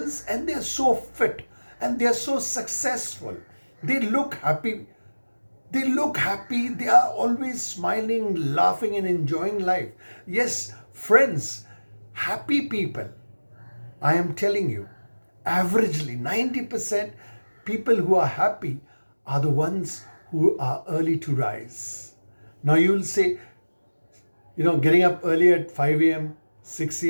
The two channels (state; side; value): inverted; both; correlation -1.00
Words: and they're so fit and they're so successful. They look happy. They look happy. They are always smiling, laughing, and enjoying life. Yes, friends, happy people, I am telling you, averagely 90% people who are happy are the ones who are early to rise. Now you'll say, getting up early at 5 a.m., 6